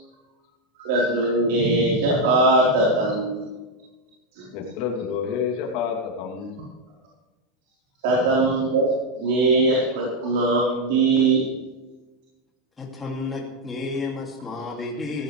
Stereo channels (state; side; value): normal; both; correlation 0.03